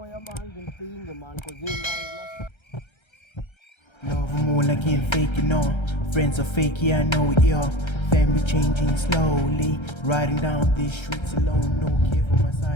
man thing man cause man. Love more like ain't fake, you know. Friends are fake, yeah, I know it, yeah. Family changing slowly. Riding down these streets alone. No care for my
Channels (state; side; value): late; right; 1.3 ms